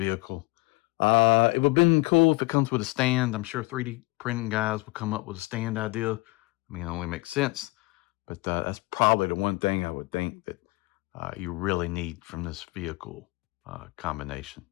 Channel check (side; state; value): right; quieter; 24.0 dB